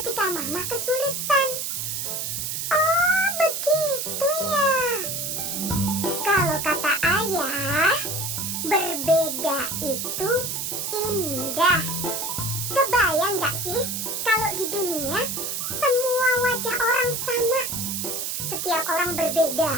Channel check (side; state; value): right; noise; hiss, 3 dB below the sound